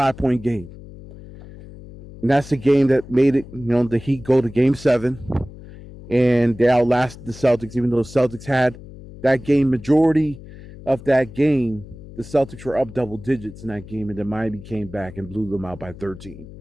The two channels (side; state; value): left; noise; hum, 17 dB below the sound